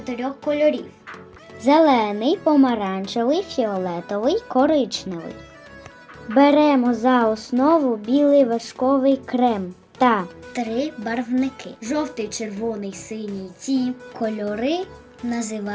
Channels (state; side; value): identical; both; correlation 1.00